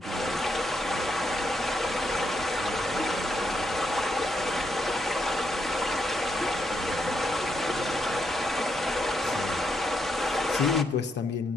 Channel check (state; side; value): normal; both; correlation 0.79